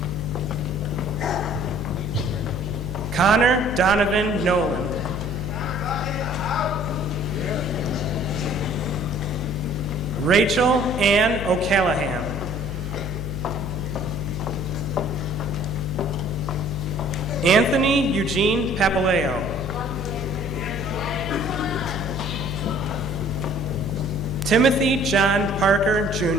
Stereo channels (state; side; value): noise; left; hum, 5 dB below the sound